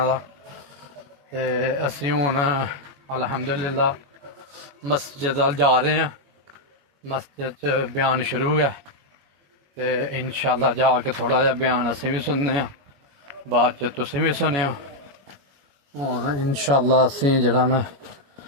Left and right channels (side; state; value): left; late; 21 ms